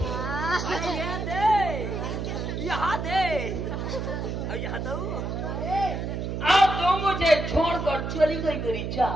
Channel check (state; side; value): noise; right; hum, 3 dB below the sound